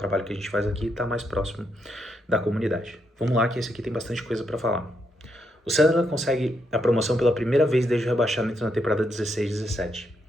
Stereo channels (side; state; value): both; normal; correlation 0.79